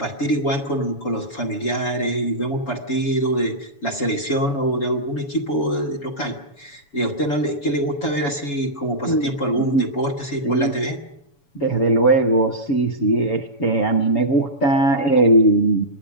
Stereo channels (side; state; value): right; late; 7.1 ms